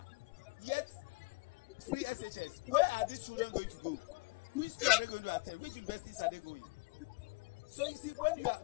Yet, free SHS. Where are these children going to go? Which school are they going to attend? Which universities are they going? So you see, when you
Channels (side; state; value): right; quieter; 28.0 dB